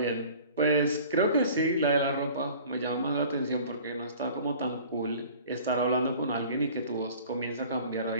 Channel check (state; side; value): inverted; both; correlation -0.46